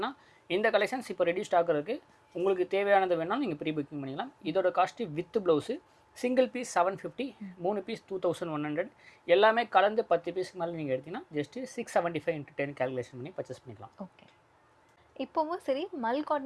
இந்த கலெக்ஷன்ஸ் இப்போ ரெடி ஸ்டாக் இருக்குது. உங்களுக்கு தேவையானது வேணாலும் நீங்கள் ப்ரீ புக்கிங் பண்ணிக்கலாம். இதோட cost with blouse single piece 750, 3 பீஸ் 2100, எல்லாமே கலந்து 10 பீஸ்க்கு மேலே நீங்கள் எடுத்தீங்கன்னா ஜஸ்ட்டு 675 × 10 கால்குலேஷன் பண்ணி பர்ச்சேஸ் பண்ணிக்கலாம். ஓகே. இப்போவும் சரி, மல்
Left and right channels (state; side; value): identical; both; correlation 1.00